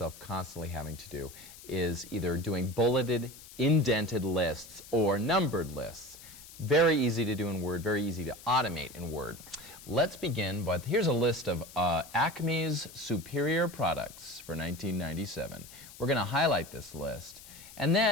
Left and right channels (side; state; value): left; noise; hiss, 18 dB below the sound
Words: constantly having to do is either doing bulleted, indented lists or numbered lists. Very easy to do in Word, very easy to automate in Word. Let's begin, but here's a list of Acme's superior products for 1997. We're going to highlight this list. And